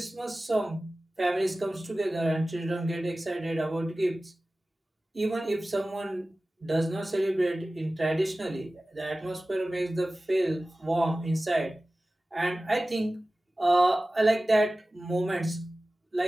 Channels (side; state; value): both; normal; correlation 0.96